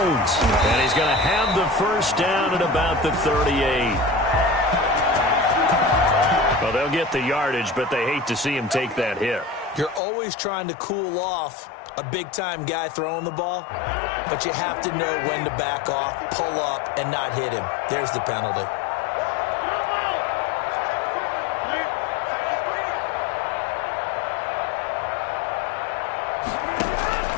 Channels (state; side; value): drops out; right; at 10.0 s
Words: And he's going to have the first down at about the 38. Well, they'll get the yardage, but they hate to see him take that hit. You're always trying to cool off a big-time guy throwing the ball, but you have to know when to back off, pull up, and not hit him. There's the penalty.